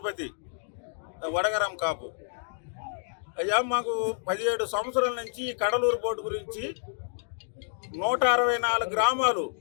వడగరం కాపు. అయ్యా, మాకు 17 సంవత్సరాల నుంచి ఈ కడలూరు బోర్డు గురించి 164 గ్రామాలు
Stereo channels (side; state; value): right; silent; digital silence